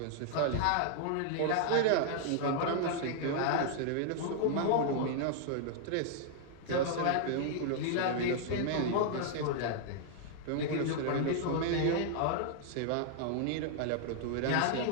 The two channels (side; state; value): both; different; correlation -0.01